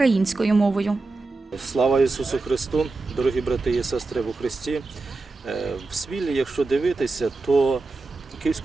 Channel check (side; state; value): left; quieter; 3.6 dB